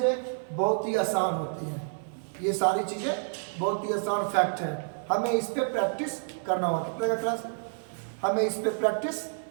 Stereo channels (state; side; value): silent; left; 59 dB below the other